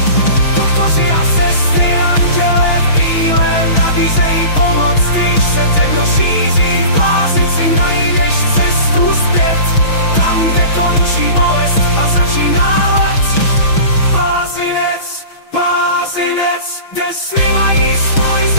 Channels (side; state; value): right; late; 6.2 ms